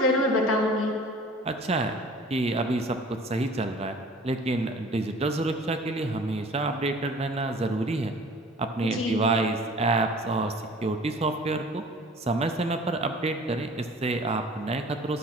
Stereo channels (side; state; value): both; normal; correlation 0.47